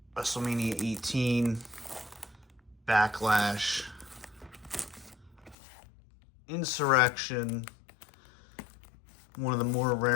WrestleMania 18, Backlash, Insurrection, one of the more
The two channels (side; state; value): right; drops out; at 5.6 s